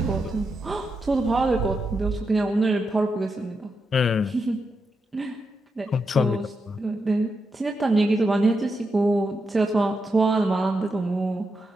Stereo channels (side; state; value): both; normal; correlation 0.85